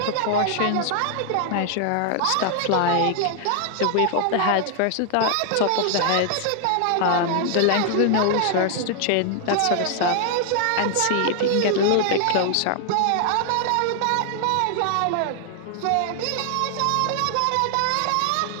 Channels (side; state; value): both; different; correlation 0.00